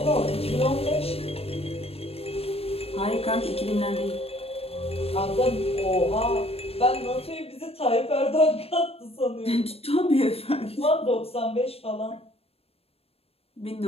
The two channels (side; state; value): right; late; 0.28 ms